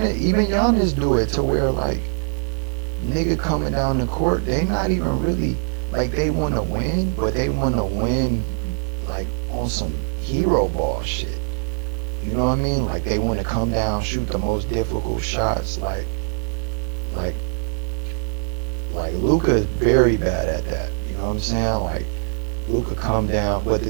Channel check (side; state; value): left; silent; digital silence